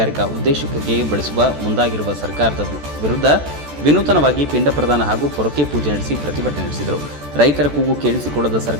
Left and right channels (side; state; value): left; late; 14 ms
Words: ಉದ್ದೇಶಕ್ಕೆ ಬಳಸುವ ಮುಂದಾಗಿರುವ ಸರ್ಕಾರದ ವಿರುದ್ಧ ವಿನೂತನವಾಗಿ ಪಿಂಡ ಪ್ರದಾನ ಹಾಗೂ ಪೊರಕೆ ಪೂಜೆ ನಡೆಸಿ ಪ್ರತಿಭಟನೆ ನಡೆಸಿದರು. ರೈತರ ಕೂಗು ಕೇಳಿಸಿಕೊಳ್ಳದ